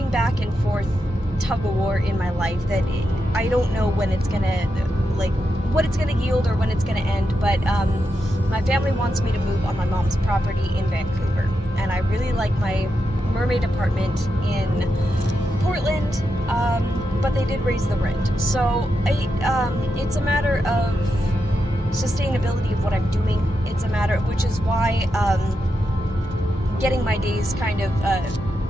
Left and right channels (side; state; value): both; normal; correlation 0.86